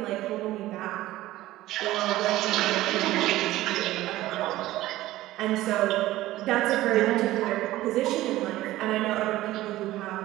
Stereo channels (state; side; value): quieter; left; 16.1 dB